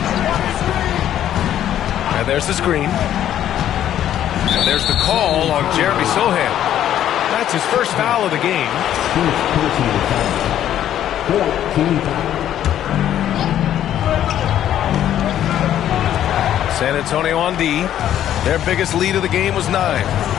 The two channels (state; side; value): quieter; right; 11.2 dB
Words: And there's the screen. And there's the call on Jeremy Sohan. That's his first foul of the game. San Antonio on D. Their biggest lead of the game was 9.